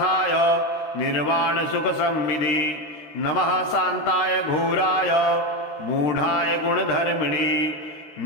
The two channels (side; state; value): right; late; 13 ms